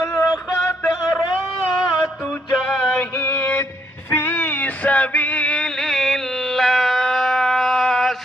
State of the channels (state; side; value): normal; both; correlation 0.72